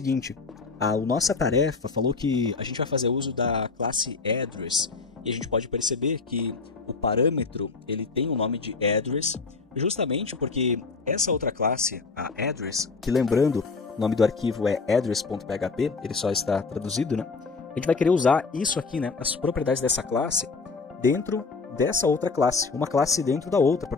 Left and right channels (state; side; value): quieter; right; 4.4 dB